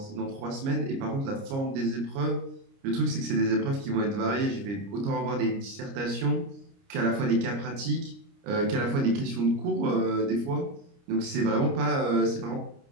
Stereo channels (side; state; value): left; late; 29 ms